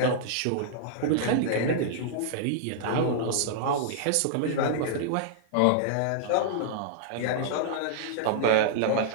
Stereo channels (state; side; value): different; both; correlation -0.01